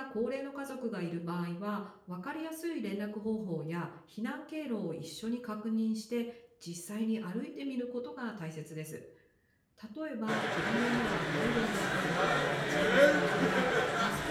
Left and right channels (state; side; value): identical; both; correlation 1.00